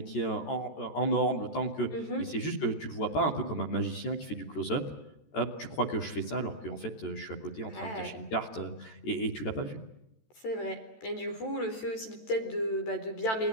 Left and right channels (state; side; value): late; right; 14 ms